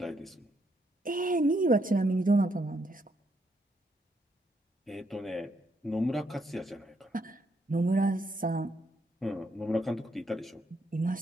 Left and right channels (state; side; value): normal; both; correlation 0.75